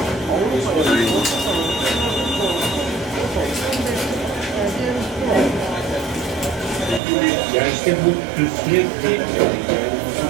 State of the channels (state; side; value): drops out; left; at 7.0 s